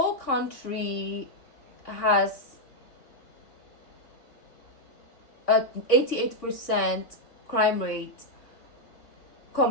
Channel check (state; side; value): late; right; 3.5 ms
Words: country has a 88% crime rate